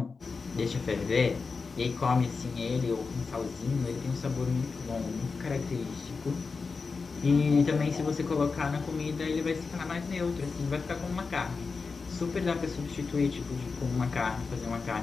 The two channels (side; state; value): right; quieter; 4.7 dB